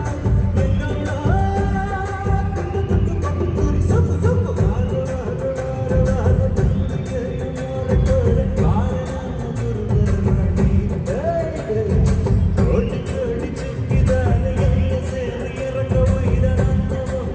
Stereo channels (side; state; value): both; identical; correlation 1.00